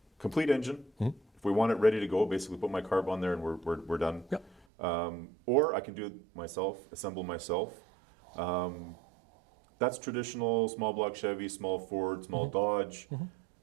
complete engine. Mm-hmm. If we want it ready to go, basically put my carb on there and we're done. Yep. Or I can do it myself, assemble myself. That's traditional small block Chevy, small Ford, small Dodge. Mm-hmm.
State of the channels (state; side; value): drops out; left; at 4.7 s